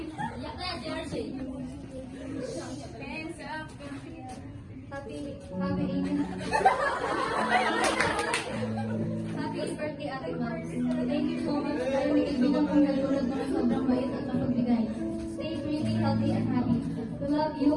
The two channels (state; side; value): identical; both; correlation 1.00